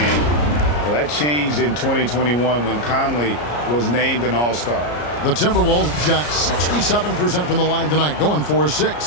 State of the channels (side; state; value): right; late; 34 ms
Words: Well, that changed in 2021 when Conley was named an All-Star. The Timberwolves shot 67% from the line tonight, going